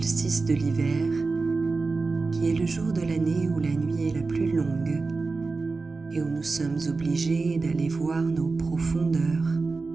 de l'hiver qui est le jour de l'année où la nuit est la plus longue et où nous sommes obligés d'aller voir nos profondeurs,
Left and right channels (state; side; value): quieter; left; 4.0 dB